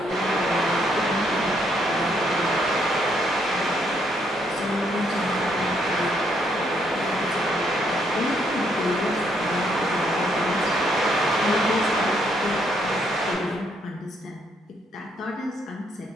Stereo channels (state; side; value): normal; both; correlation 0.72